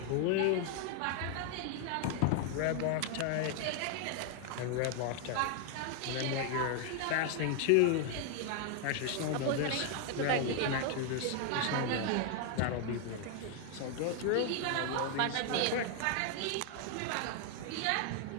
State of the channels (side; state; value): both; different; correlation 0.00